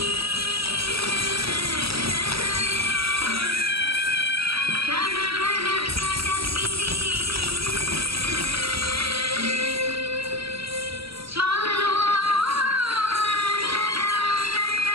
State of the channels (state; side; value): late; left; 0.76 ms